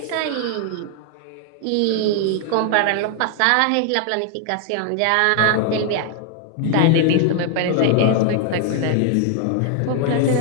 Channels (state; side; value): different; both; correlation 0.00